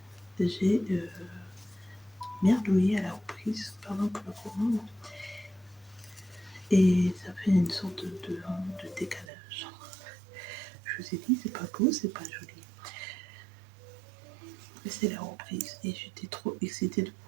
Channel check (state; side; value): drops out; left; at 9.3 s